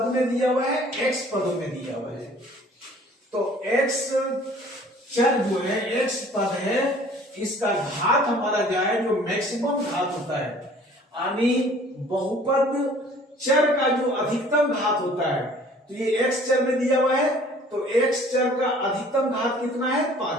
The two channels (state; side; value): normal; both; correlation 0.52